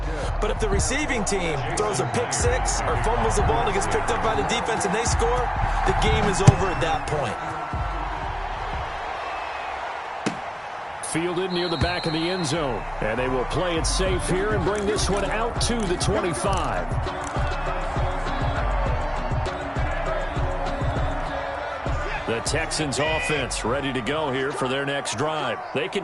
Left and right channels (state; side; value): identical; both; correlation 1.00